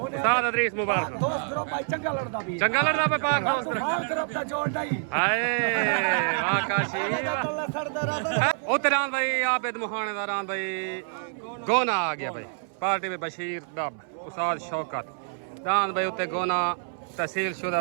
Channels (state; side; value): silent; left; 60 dB below the other